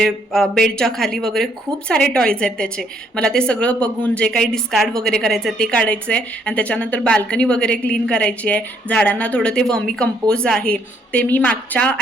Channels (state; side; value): normal; both; correlation 0.68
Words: बेडच्या खाली वगैरे खूप सारे टॉईज आहेत त्याचे. मला ते सगळं बघून जे काही डिस्कार्ड वगैरे करायचं आहे ते काढायचं आहे आणि त्याच्यानंतर बाल्कनी वगैरे क्लीन करायची आहे. झाडांना थोडं ते वर्मी कंपोज आहे ते मी मागच्या